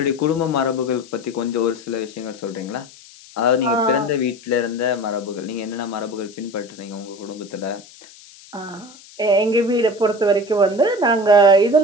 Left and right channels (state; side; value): noise; left; hiss, 22 dB below the sound